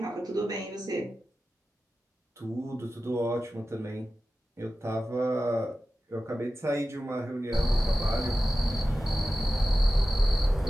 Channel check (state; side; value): normal; both; correlation 0.94